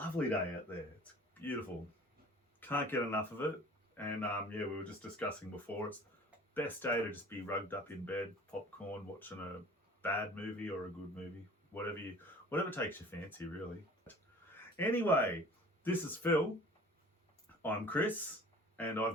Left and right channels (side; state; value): both; normal; correlation 0.46